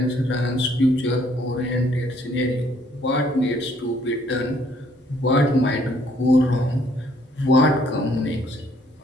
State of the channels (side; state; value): both; normal; correlation 0.64